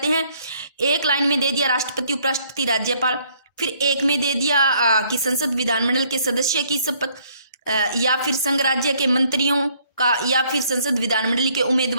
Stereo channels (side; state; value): both; inverted; correlation -0.65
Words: हैं, एक लाइन में दे दिया राष्ट्रपति, उपराष्ट्रपति, राज्यपाल, फिर एक में दे दिया कि संसद विधानमंडल के सदस्य की शपथ, या फिर संघ राज्य के मंत्रियों का, या फिर संसद विधानमंडल के